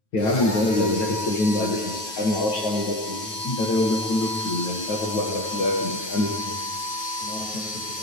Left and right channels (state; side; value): late; right; 9.3 ms